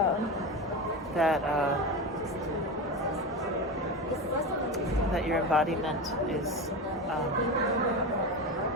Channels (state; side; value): normal; both; correlation 0.22